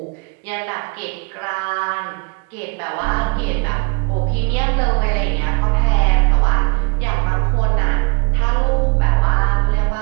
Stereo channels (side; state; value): left; quieter; 31.2 dB